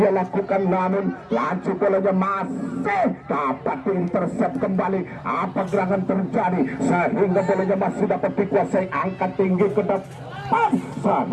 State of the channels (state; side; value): identical; both; correlation 1.00